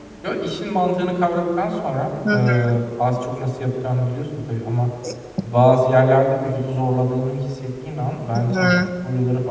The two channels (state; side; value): identical; both; correlation 1.00